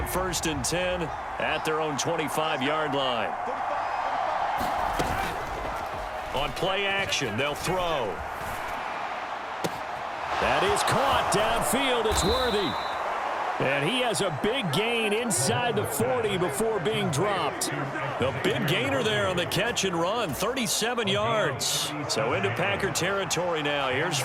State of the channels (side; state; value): both; identical; correlation 1.00